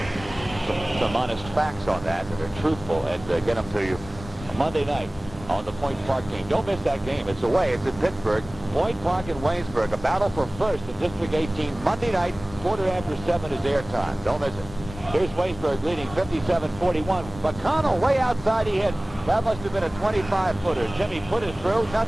some honest facts on that are truthful and get them to you Monday night on the Point Park game. Don't miss that game. It's away. It's in Pittsburgh. Point Park and Waynesburg. A battle for first in District 18. Monday night, 7:15 is airtime. Don't miss it. Here's Waynesburg leading 57-41. McConnell way outside. He hit. That must have been a 25-footer. Jimmy put it through.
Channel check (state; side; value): noise; left; rumble, 14 dB below the sound